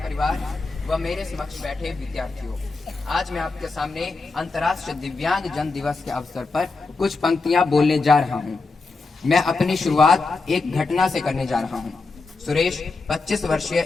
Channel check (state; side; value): quieter; right; 3.9 dB